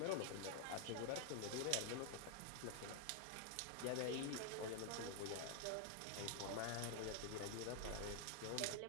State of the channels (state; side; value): different; both; correlation 0.00